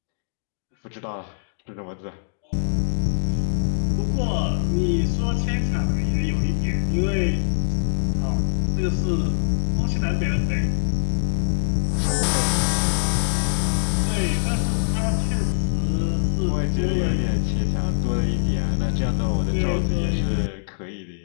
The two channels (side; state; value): right; silent; digital silence